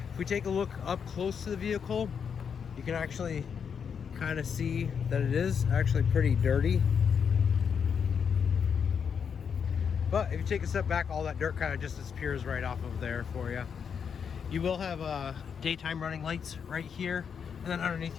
If we take a look up close to the vehicle, you can actually kind of see that it is actually pretty dirty. But if you take a step back, all that dirt kind of just disappears right off of there for you. You will have daytime running lights right here. And then underneath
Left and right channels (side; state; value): right; quieter; 6.9 dB